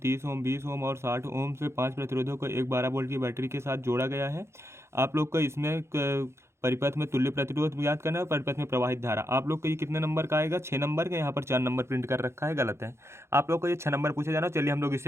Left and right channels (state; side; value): late; left; 0.13 ms